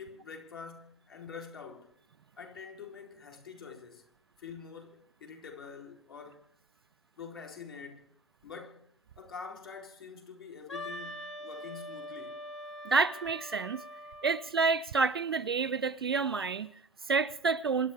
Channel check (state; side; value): quieter; left; 3.6 dB